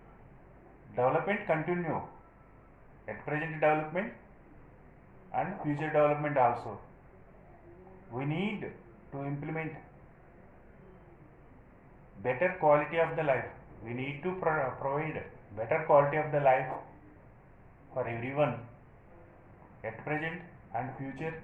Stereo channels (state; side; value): identical; both; correlation 1.00